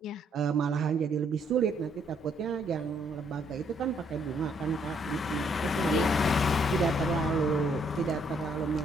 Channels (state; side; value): normal; both; correlation 0.69